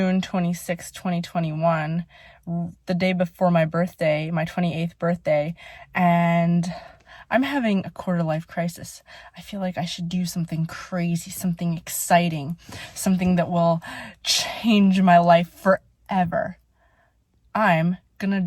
26, 2021, the day before my birthday, my 28th birthday, and I'm having a quarter-life crisis. I feel like I should do something crazy, something exciting, something that will change my life forever. I'm gonna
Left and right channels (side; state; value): both; identical; correlation 1.00